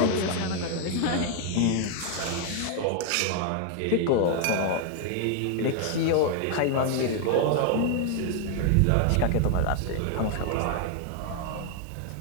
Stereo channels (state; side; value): different; both; correlation 0.00